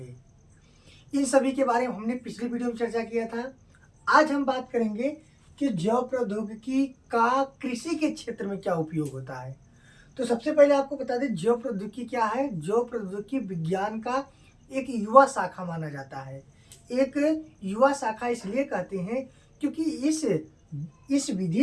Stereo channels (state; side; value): identical; both; correlation 1.00